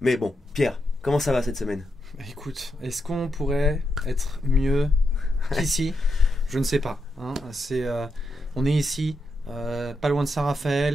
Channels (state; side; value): normal; both; correlation 0.84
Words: Mais bon, Pierre, comment ça va cette semaine ? Écoute, est-ce qu'on pourrait être mieux qu'ici? Je ne sais pas. Hein. On est ici, pas loin de